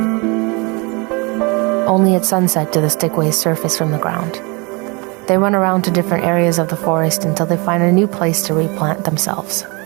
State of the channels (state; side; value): quieter; left; 28.9 dB